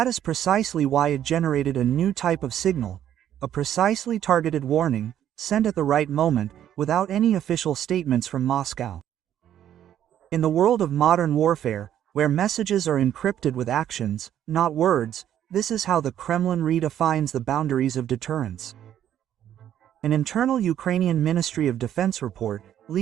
is precisely why it generated a new type of signal, a precisely targeted warning, sent at the right moment, without any official statements from Moscow. In the world of modern warfare, where messages are encrypted with actions, not words, this is how the Kremlin redefines the boundaries of deterrence. An internal Ukrainian Ministry of Defense report,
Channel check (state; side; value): quieter; left; 10.7 dB